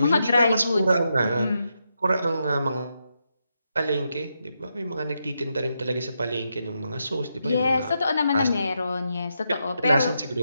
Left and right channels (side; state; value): both; inverted; correlation -0.83